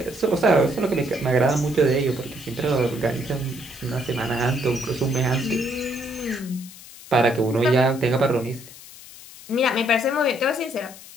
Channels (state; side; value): noise; left; hiss, 18 dB below the sound